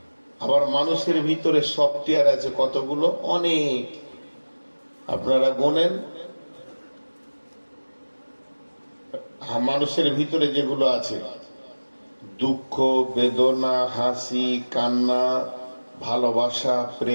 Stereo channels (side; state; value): both; inverted; correlation -1.00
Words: আবার মানুষের ভিতরে সফটওয়্যার আছে কতগুলো, অনেক। আপনারা গোনেন, মানুষের ভিতরে যেগুলো আছে, দুঃখ, বেদনা, হাসি, কান্না, ভালোবাসা,